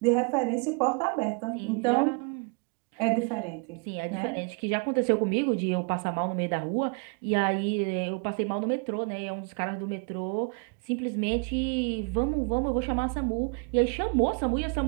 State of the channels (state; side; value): quieter; left; 34.6 dB